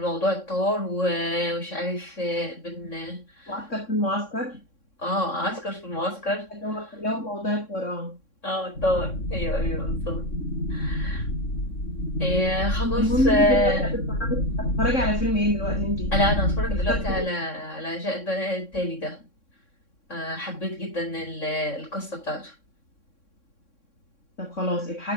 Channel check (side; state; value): right; late; 3.6 ms